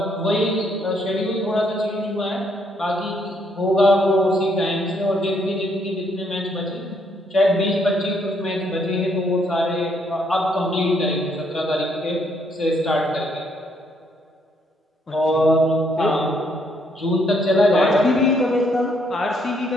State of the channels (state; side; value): normal; both; correlation 0.71